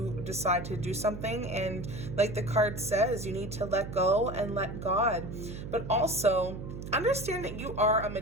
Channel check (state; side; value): noise; right; hum, 9 dB below the sound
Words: decide to do something. And like the card says, you need to let go and let God. But also understand that you are a